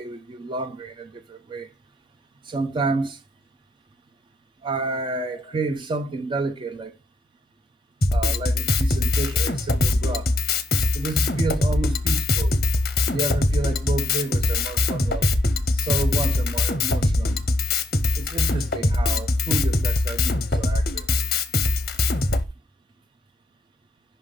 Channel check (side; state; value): both; normal; correlation 0.74